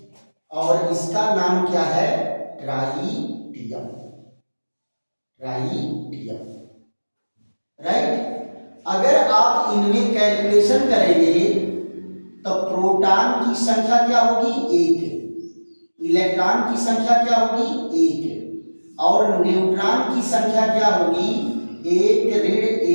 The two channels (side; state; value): both; inverted; correlation -1.00